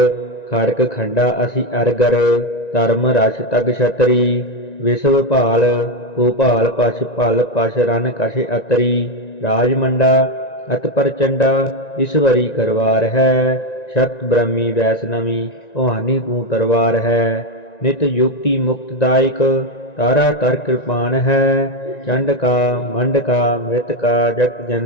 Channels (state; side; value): late; right; 1.9 ms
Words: ਖੜਕ ਖੰਡਾ ਅਸੀਂ ਅਰਗਰ, ਧਰਮ ਰਸ ਤਗ ਛਤਰੀ। ਵਿਸ਼ਵ ਭਾਲ ਭੂਪਾਲ ਪਛ ਭਲ ਪਛ ਰਨ ਕਛ ਅਤਰੀ। ਰਾਜਮੰਡਾ ਅਤ ਪ੍ਰਚੰਡਾ, ਈਸ਼ਵਰੀ ਕਰਵਾਰ ਹੈ। ਸ਼ਕਤ ਬ੍ਰਹਮੀ ਵੈਸ਼ਨਵੀ, ਭਵਾਨੀ ਤੂੰ ਤਰਵਾਰ ਹੈ। ਨਿਤ ਯੁਕਤੀ ਮੁਕਤਦਾਇਕ, तारा तर कृपान है। चंड का मंड का मृत का जगत